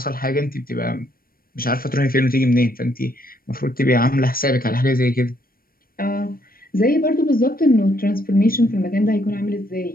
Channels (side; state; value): right; late; 0.43 ms